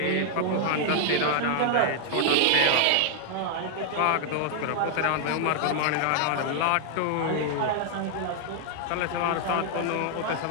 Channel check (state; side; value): different; both; correlation 0.00